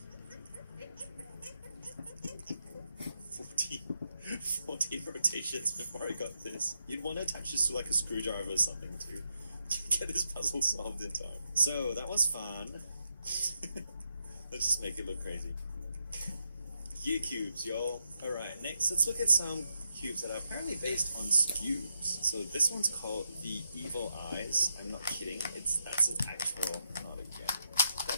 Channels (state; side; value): inverted; both; correlation -0.83